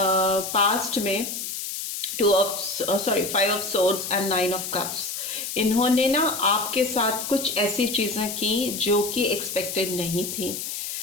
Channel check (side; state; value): left; noise; hiss, 5 dB below the sound